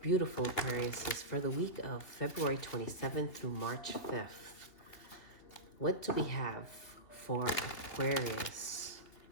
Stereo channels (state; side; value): late; right; 3.3 ms